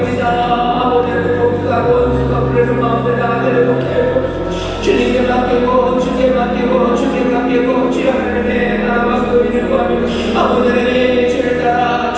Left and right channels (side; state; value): both; identical; correlation 1.00